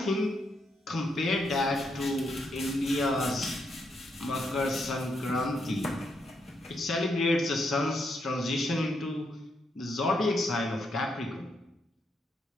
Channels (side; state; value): both; normal; correlation 0.79